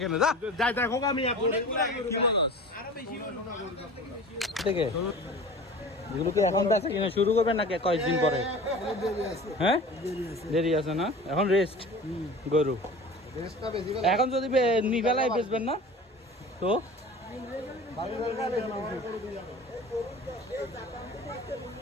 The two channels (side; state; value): both; normal; correlation 0.39